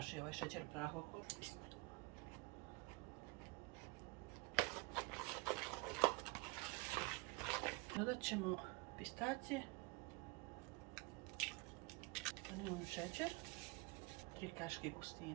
ovaj šećer u prahu okolo. Dodat ćemo pistacije, vanilin šećer, 3 kaške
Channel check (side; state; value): left; quieter; 27.8 dB